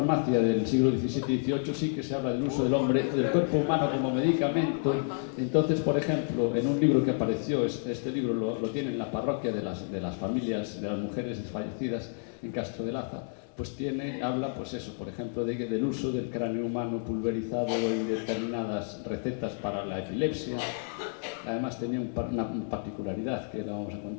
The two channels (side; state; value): right; silent; digital silence